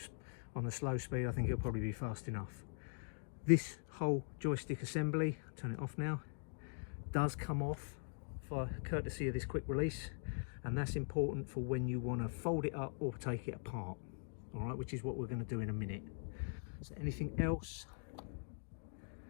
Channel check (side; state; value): right; silent; digital silence